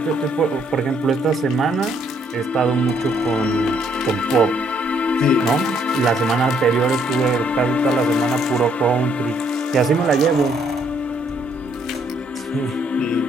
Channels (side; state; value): both; normal; correlation 0.69